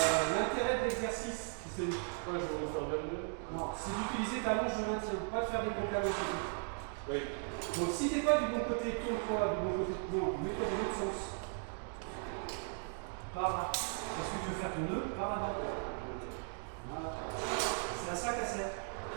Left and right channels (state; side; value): silent; left; 53 dB below the other